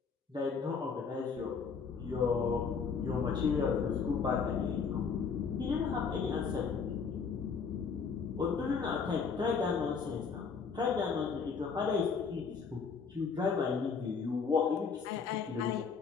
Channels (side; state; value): right; quieter; 5.7 dB